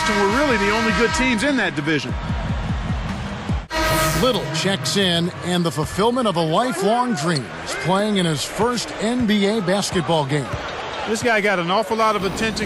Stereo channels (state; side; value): identical; both; correlation 1.00